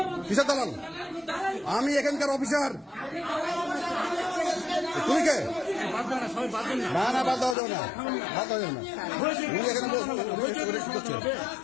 কিসের দালাল? আমি এখানকার অফিসার। তুমি কে? না না, বাদ দেওয়া যাবে না, বাদ দেওয়া যাবে না। উনি এখানে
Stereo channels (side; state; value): right; drops out; at 7.6 s